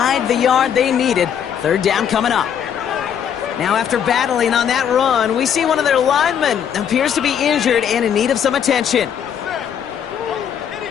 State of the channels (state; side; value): quieter; right; 8.6 dB